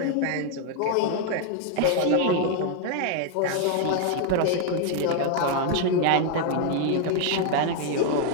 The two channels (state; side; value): different; both; correlation 0.00